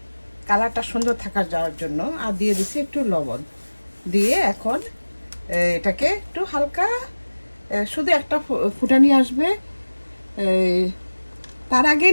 কালারটা সুন্দর থাকার যাওয়ার জন্য, আর দিয়ে দিচ্ছি একটু লবণ দিয়ে এখন এটাকে একটু হালকা শুধু একটা ফুটানি আসবে, তার আগেই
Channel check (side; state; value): both; inverted; correlation -1.00